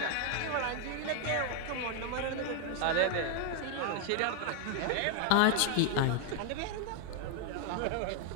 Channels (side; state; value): both; different; correlation 0.00